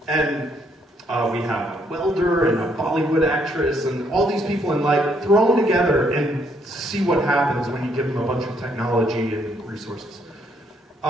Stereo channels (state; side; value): normal; both; correlation 0.70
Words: And we have a welder and a Bollywood actress and all these people in life thrown together and see what happens when you give them a bunch of technology and resources.